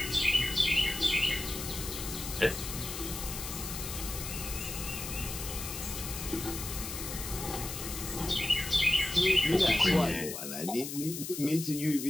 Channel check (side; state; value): left; noise; hiss, 7 dB below the sound